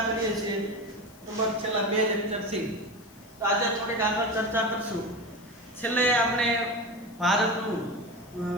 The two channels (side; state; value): left; noise; hiss, 25 dB below the sound